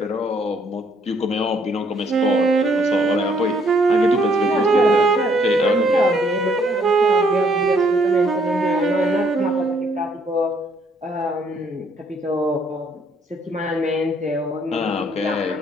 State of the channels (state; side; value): normal; both; correlation 0.66